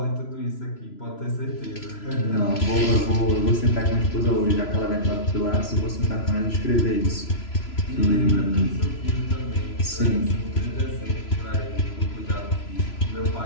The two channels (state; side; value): late; right; 3.0 ms